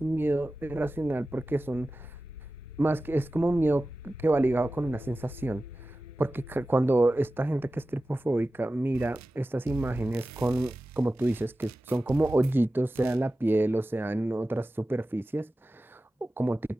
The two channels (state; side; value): normal; both; correlation 0.95